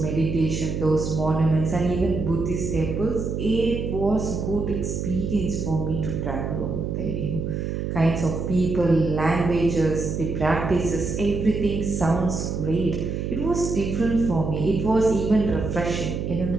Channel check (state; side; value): noise; right; hum, 3 dB below the sound